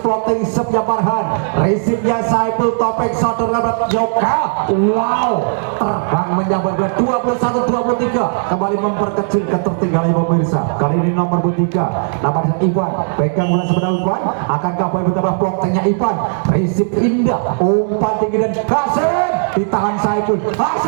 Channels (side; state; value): left; silent; digital silence